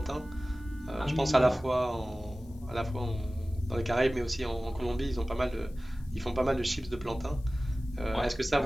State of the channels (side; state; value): left; noise; hiss, 29 dB below the sound